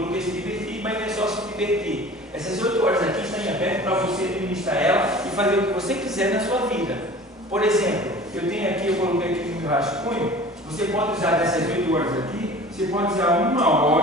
esse inverter. Essas 8 horas aqui estão em aberto para você administrar ela e fazer o que você quiser na sua vida. Por exemplo, eu tenho aqui, eu coloquei aqui no meu rascunho, você pode usar dessas 8 horas aqui, você pode usar 1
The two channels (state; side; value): normal; both; correlation 0.42